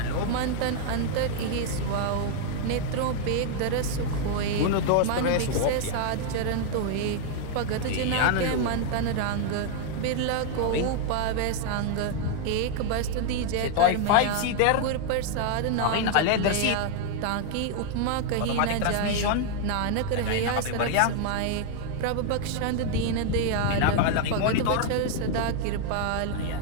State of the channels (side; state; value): both; different; correlation 0.00